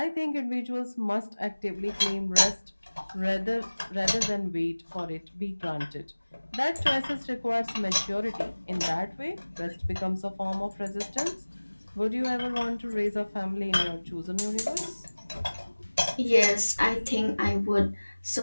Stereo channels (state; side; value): inverted; both; correlation -1.00